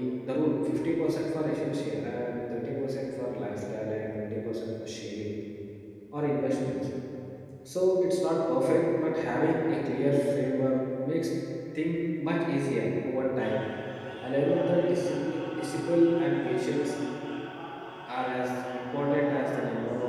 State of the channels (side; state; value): both; identical; correlation 1.00